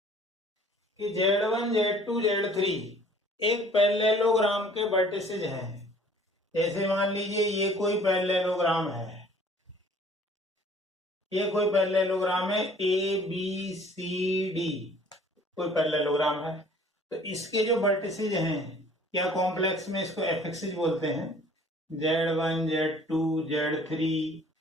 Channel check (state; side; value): normal; both; correlation 0.53